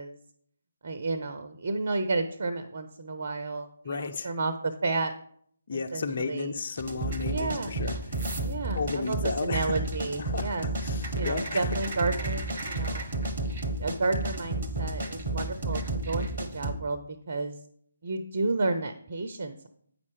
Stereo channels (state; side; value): inverted; both; correlation -0.62